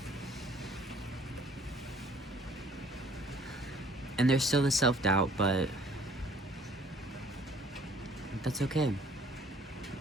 And there's still the self-doubt, but that's okay.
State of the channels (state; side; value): normal; both; correlation 0.57